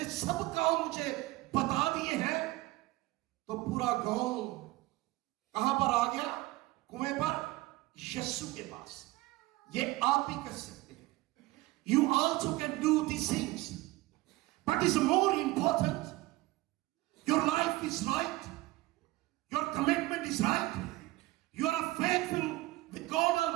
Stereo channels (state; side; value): quieter; left; 19.4 dB